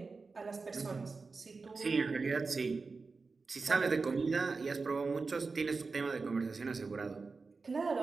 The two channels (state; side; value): quieter; left; 4.3 dB